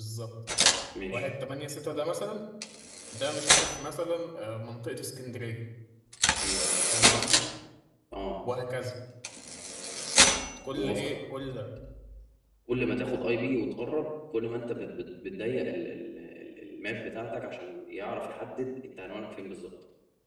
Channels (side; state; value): both; identical; correlation 1.00